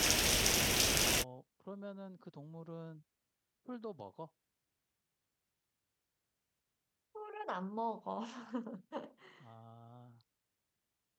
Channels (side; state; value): both; identical; correlation 1.00